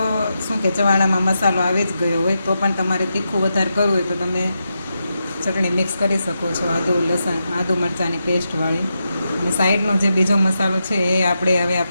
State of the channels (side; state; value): both; inverted; correlation -0.87